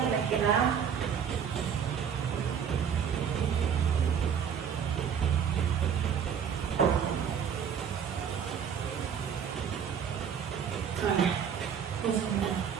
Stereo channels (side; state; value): left; quieter; 7.7 dB